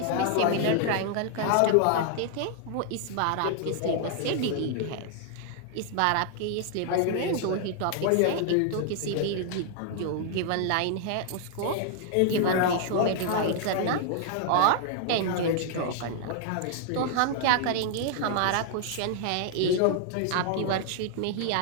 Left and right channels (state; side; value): different; both; correlation 0.00